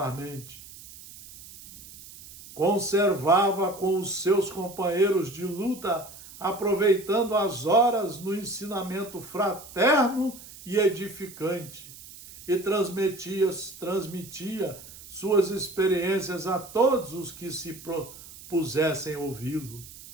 Conservava com os seus companheiros de luta, aproveitando as horas no ensinamento fraterno e edificante, e transmitia suas experiências a todos os que se propusessem ouvi-lo.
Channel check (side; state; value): right; noise; hiss, 17 dB below the sound